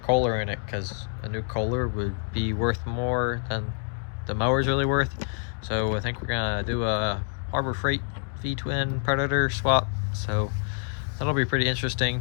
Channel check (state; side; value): silent; right; 60 dB below the other